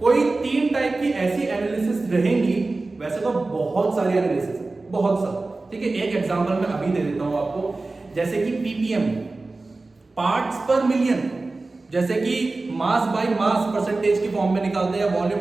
कोई 3 टाइप की ऐसी एनालिसिस रहेंगी, वैसे तो बहुत सारी एनालिसिस, बहुत सारी। ठीक है, एक एग्जांपल मैं अभी दे देता हूं आपको, जैसे कि पीपीएम, पार्ट्स पर मिलियन, जैसे कि मास बाय मास परसेंटेज की फॉर्म में निकालते हैं,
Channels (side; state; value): left; quieter; 3.4 dB